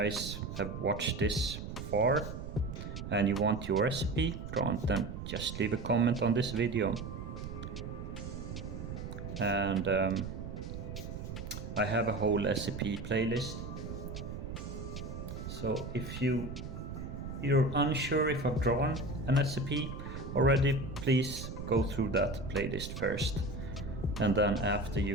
have watched this far and you want your recipe drawn, then just leave a comment on this video. And I have a whole SCP playlist. So if you're unsure if I've drawn an SCP already, please go through that playlist first, and then after you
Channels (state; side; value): noise; right; rumble, 8 dB below the sound